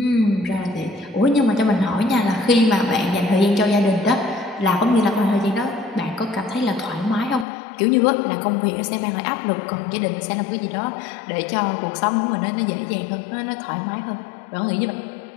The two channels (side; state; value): right; drops out; at 7.5 s